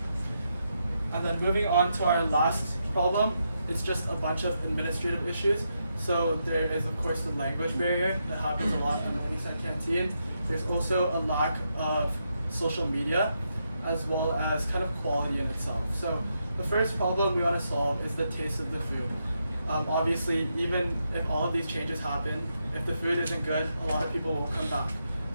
And then moving on to our last problem, it's just a bunch of administrative issues. So there is of course the language barrier that happens a lot in Morningside Canteen. There's also a lack of social media as well as kind of quality in itself. So the first problem we want to solve is the taste of the food. Obviously, even if all of these changes happen, if the food isn't good, a lot of people won't come back.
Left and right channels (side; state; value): both; inverted; correlation -0.82